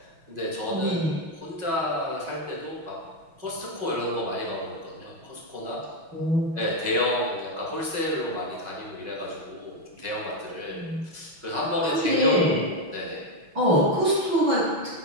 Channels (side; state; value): left; late; 6.1 ms